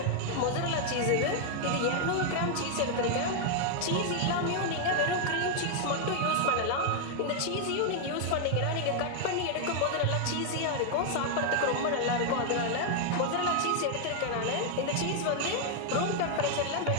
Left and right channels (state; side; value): different; both; correlation 0.00